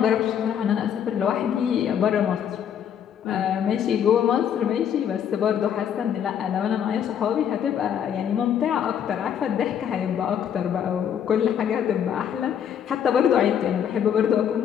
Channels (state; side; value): quieter; right; 8.9 dB